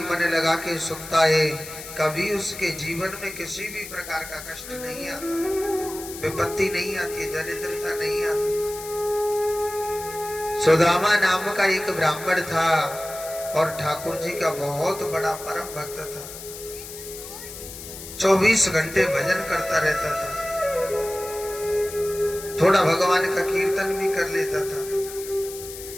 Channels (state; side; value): noise; left; hiss, 12 dB below the sound